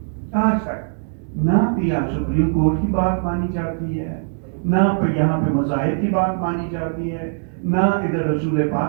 आज तक ना भी यहाँ सुप्रीम कोर्ट की बात मानी जाती है, ना यहाँ पे मज़ाहिब की बात मानी जाती है, ना इधर रसूल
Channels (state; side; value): silent; left; 65 dB below the other